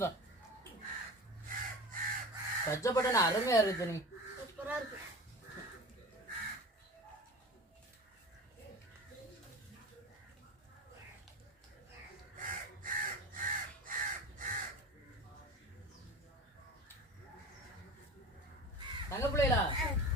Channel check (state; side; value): normal; both; correlation 0.34